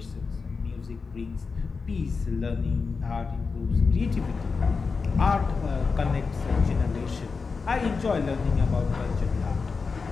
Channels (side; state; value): right; quieter; 4.7 dB